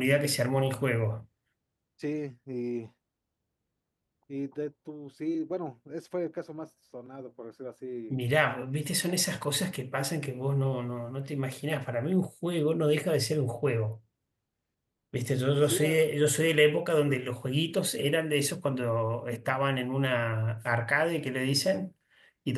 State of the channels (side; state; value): both; identical; correlation 1.00